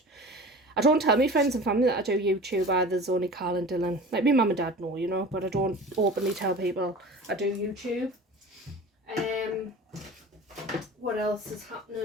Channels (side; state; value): both; normal; correlation 0.38